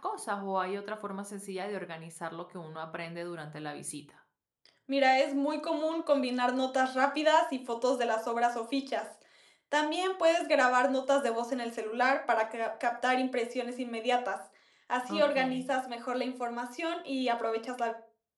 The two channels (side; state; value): both; identical; correlation 1.00